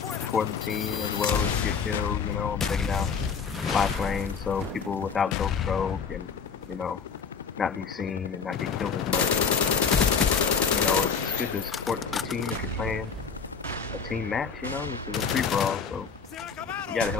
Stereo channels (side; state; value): right; quieter; 6.1 dB